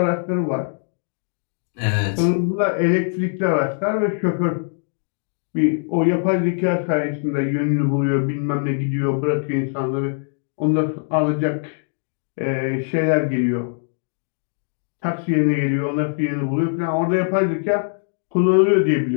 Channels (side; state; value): right; silent; digital silence